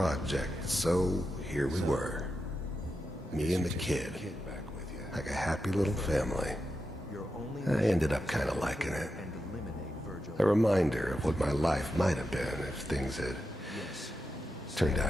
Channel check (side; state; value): both; normal; correlation 0.88